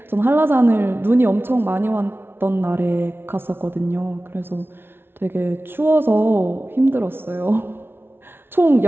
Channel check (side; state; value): left; late; 0.11 ms